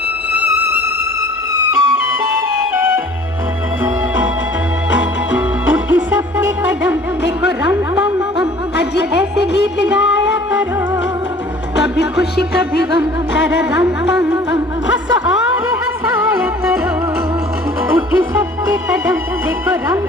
उठी सबके कदम देखो रंग पम पम। आज ऐसे गीत गाया करो, कभी खुशी कभी गम, तारा रंग पम पम। हंसो और हंसाया करो। उठी सबके कदम देखो रंग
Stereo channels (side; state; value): both; normal; correlation 0.50